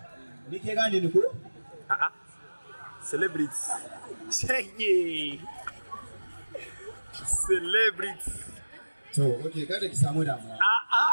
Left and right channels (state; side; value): inverted; both; correlation -1.00